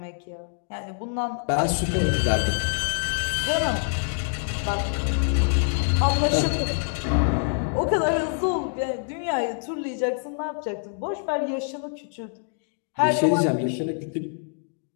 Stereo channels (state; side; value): silent; right; digital silence